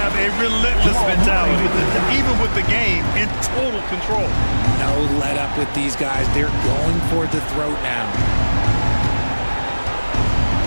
a relentless mentality, even with the game in total control. No let up with these guys. They're going for the throat now.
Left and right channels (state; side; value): inverted; both; correlation -1.00